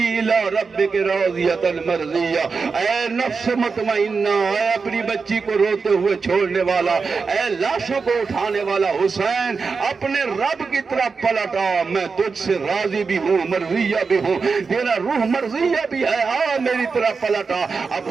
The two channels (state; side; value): quieter; left; 4.9 dB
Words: الی ربک راضیۃ مرضیہ، اے نفس مطمئنہ، اے اپنی بچی کو روتے ہوئے چھوڑنے والا، اے لاشوں کو اٹھانے والا حسین اپنے رب کی طرف پلٹا، میں تجھ سے راضی بھی ہوں مرضیہ بھی ہوں، تیرا روح مرضیہ بھی ہے، آ میری طرف پلٹا۔ اب